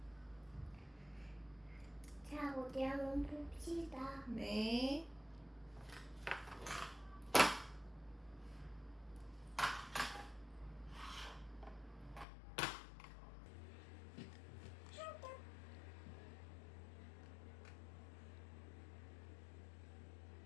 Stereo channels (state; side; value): drops out; right; at 12.2 s